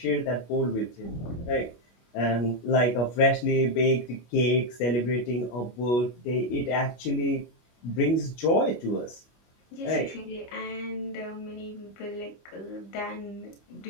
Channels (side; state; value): right; late; 25 ms